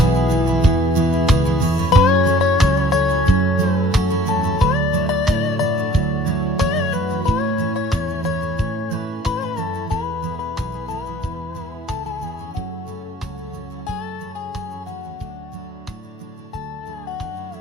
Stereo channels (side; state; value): both; normal; correlation 0.52